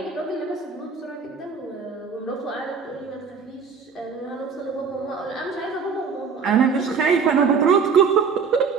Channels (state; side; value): quieter; left; 5.7 dB